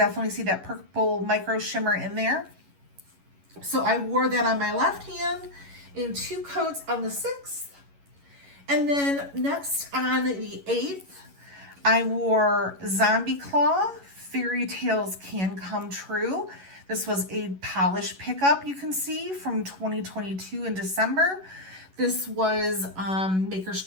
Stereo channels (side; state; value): left; late; 11 ms